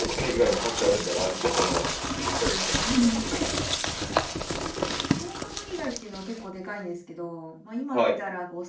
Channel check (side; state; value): both; identical; correlation 1.00